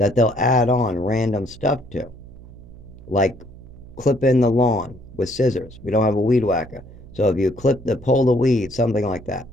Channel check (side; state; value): right; noise; hum, 19 dB below the sound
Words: they'll add on random stuff to, like clip in the lawn with scissors. We don't have a weed whacker. So if you pull the weeds, something like that.